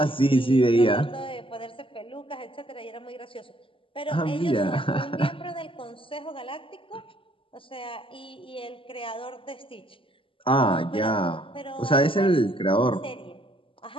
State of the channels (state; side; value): late; right; 0.25 ms